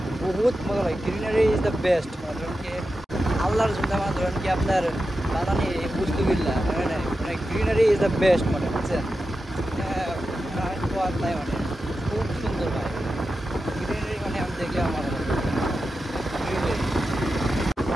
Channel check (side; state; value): both; normal; correlation 0.91